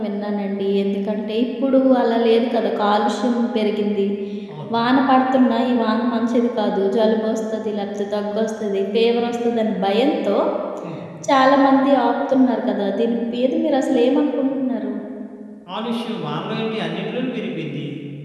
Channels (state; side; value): identical; both; correlation 1.00